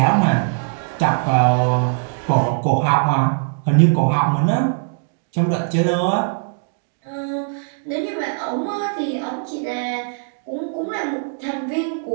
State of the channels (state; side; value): silent; left; digital silence